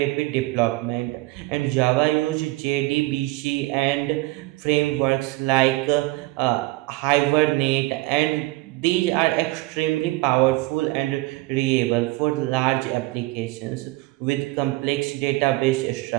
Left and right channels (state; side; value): quieter; left; 21.0 dB